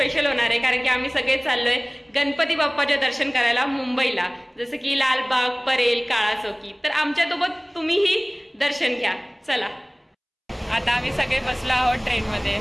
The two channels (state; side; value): identical; both; correlation 1.00